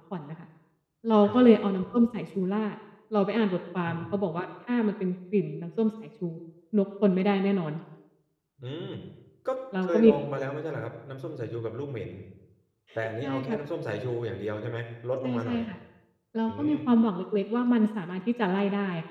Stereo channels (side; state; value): both; identical; correlation 1.00